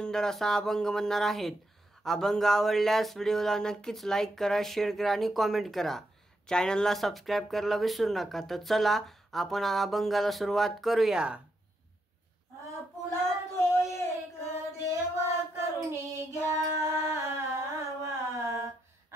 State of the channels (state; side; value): normal; both; correlation 0.82